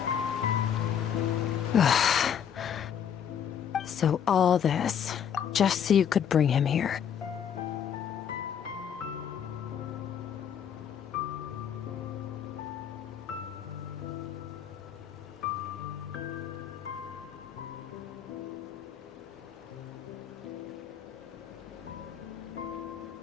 So all this, just so you could bring him here.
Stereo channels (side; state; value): right; quieter; 8.5 dB